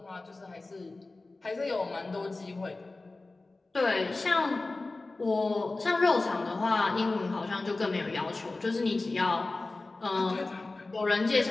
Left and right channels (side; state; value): right; quieter; 3.3 dB